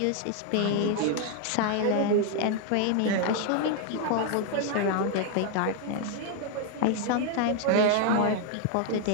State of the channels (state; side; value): different; both; correlation 0.00